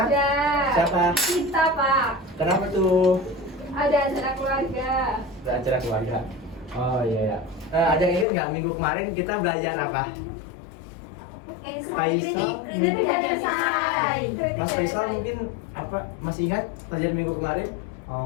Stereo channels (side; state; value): right; drops out; at 8.2 s